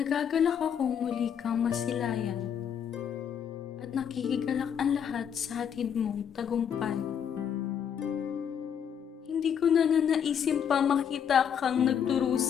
akong muli kang masilayan at nakikigalak ang lahat sa hatid mong tagumpay. Hindi ko na nanaisin pa makita kang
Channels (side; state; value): right; quieter; 8.2 dB